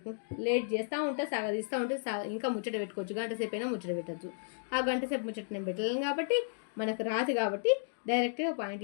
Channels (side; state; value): right; silent; digital silence